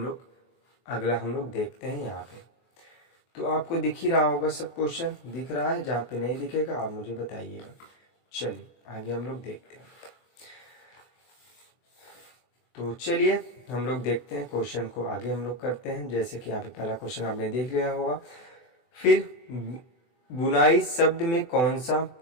लोग अगला हम लोग देखते हैं। यहाँ पे तो आपको दिख ही रहा होगा सब क्वेश्चन, दिख रहा है? जहाँ पे नहीं दिखेगा आप मुझे बताइएगा। चलिए आगे हम लोग देखते हैं। तो चलिए हम लोग देखते हैं क्वेश्चन को, आगे हम लोग करते हैं। जैसे कि यहाँ पे पहला क्वेश्चन आपने देख लिया होगा। फिर बुनाई शब्द में कौन सा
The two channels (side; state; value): right; late; 24 ms